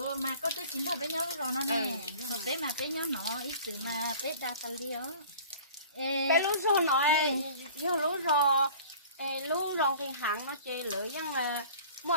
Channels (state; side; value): inverted; both; correlation -0.45